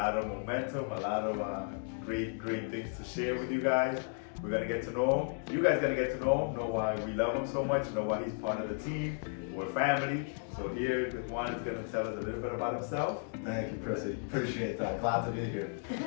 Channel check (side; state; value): right; silent; 55 dB below the other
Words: of momentum, a lot of great things to share with you guys. We're gonna get to know him. You guys gonna get to know why we love him so much, know why he's part of the team. We're family. So here, Juan is gonna tell us a little bit about himself. Thank you, Prissy. Appreciate that. Glad to be here.